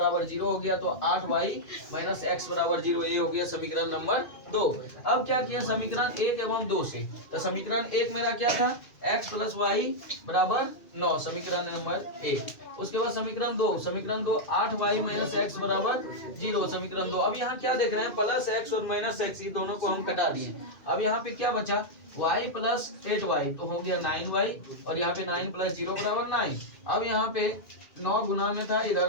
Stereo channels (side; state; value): right; late; 2.4 ms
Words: 0 हो गया। तो 8y माइनस x बराबर 0, ये हो गया समीकरण नंबर 2। अब क्या किया, समीकरण 1 एवं 2 से, तो समीकरण 1 मेरा क्या था, x प्लस y बराबर 9, समीकरण नंबर 1। उसके बाद समीकरण 2 8y माइनस x बराबर 0, समीकरण 2। अब यहाँ क्या देख रहे हैं, प्लस x और माइनस x, ये दोनों को हम कटा दिए। अब यहाँ पे क्या बचा, y प्लस 8y, तो हो गया 9y, और यहाँ पे 9 प्लस 0 बराबर 9। अब यहाँ पे 9 गुना में था,